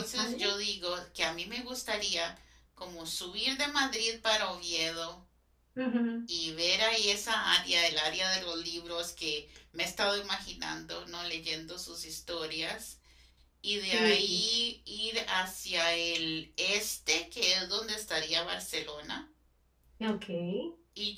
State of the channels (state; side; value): identical; both; correlation 1.00